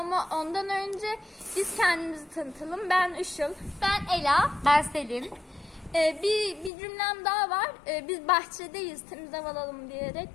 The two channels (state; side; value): drops out; right; at 6.7 s